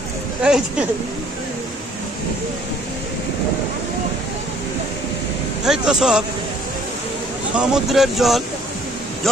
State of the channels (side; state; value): both; normal; correlation 0.58